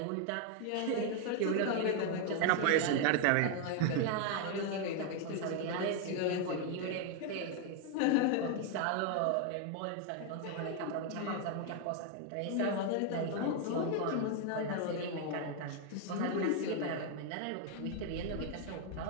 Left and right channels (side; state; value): both; different; correlation 0.01